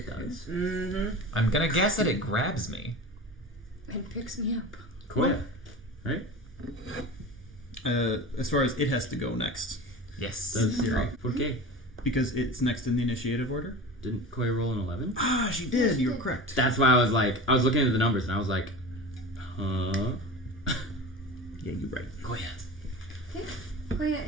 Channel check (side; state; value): both; normal; correlation 0.32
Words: does. Mm-hmm. I'm gonna guess that it grabs me. And picks me up. Koya, right? As far as it has to go next, Yes. Does Sierra. Okay. because it's next in the initiative order. Didn't Koya roll an 11? Ah, she did. You're correct. That's why I was looking at the numbers and I was like, huh? Yeah, you're right. Koya. Okay.